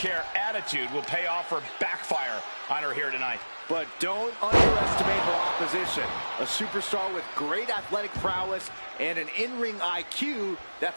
attitude will pay off or backfire on her here tonight. But don't underestimate her opposition. A superstar with great athletic prowess and an in-ring IQ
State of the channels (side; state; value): both; inverted; correlation -1.00